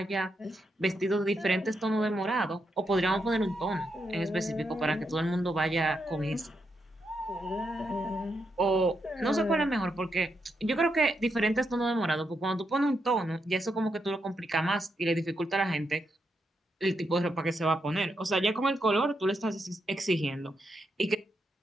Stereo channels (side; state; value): both; normal; correlation 0.82